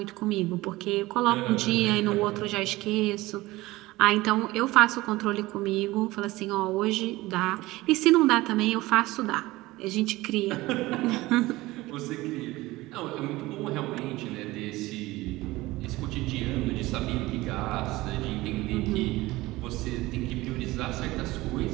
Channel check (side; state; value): left; quieter; 19.2 dB